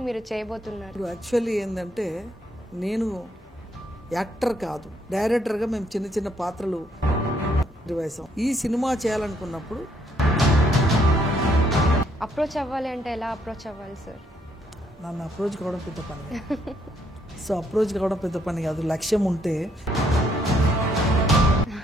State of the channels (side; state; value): both; normal; correlation 0.71